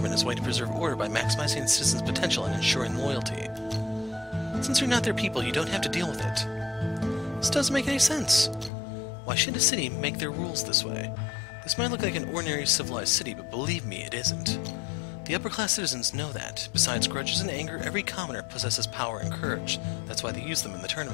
is a way to preserve order by maximizing citizens' potential and ensuring loyalty. Since you're not their people, you don't have to deal with it. This doesn't make any sense. Why should a city make their rules this way? This might look like an ordinary civilized city, but believe me, it isn't. The upper-class citizens know that. Besides grudges and anger, every commoner possesses power and courage. That's why they use them in the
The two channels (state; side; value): drops out; right; at 8.7 s